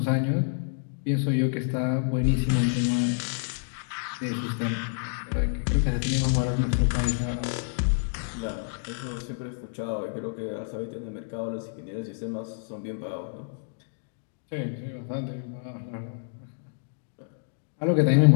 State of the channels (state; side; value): silent; right; digital silence